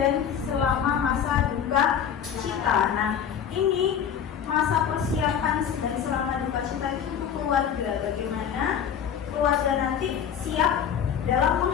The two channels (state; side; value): quieter; right; 8.4 dB